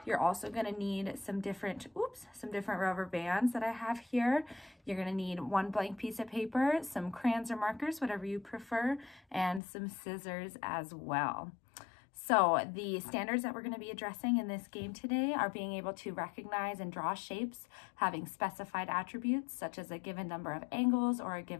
You're also going to need some different rubber bands that I have here. You're going to need one blank piece of paper, some crayons or markers, whatever you prefer, and some scissors as well. So the standards that we're going to be addressing in this game today are being able to recognize and draw shapes having specified attributes such as a given number of angles or a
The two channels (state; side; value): drops out; right; at 9.6 s